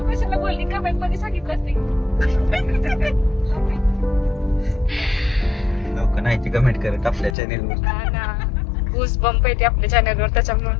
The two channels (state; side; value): drops out; right; at 7.4 s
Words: लोक नाही कमेंट करत आपल्या चॅनेलवर. बूस बंप येते आपल्या चॅनलवर,